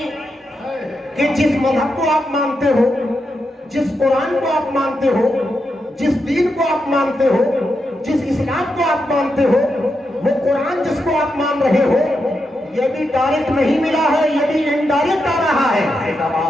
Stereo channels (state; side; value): normal; both; correlation 0.85